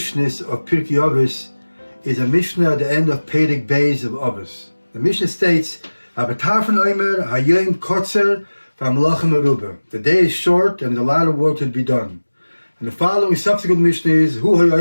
of Pirki Avos is a Mishnah at the end of Perek Beis of Avos. The Mishnah states, Rabbi Tarfon omer, hayom kotzer v'hamolachim meruba. The day is short and there's a lot of work to be done. And the following subsequent Mishnah is, Hu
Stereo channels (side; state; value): both; inverted; correlation -1.00